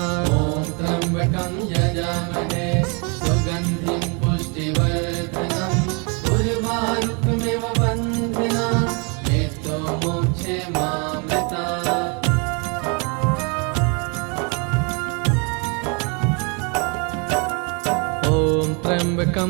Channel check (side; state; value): left; quieter; 34.0 dB